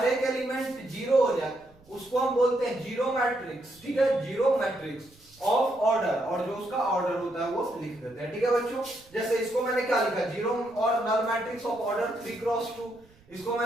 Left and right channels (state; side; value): noise; right; rumble, 28 dB below the sound